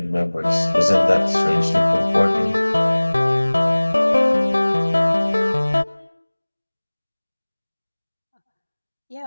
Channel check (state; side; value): inverted; both; correlation -1.00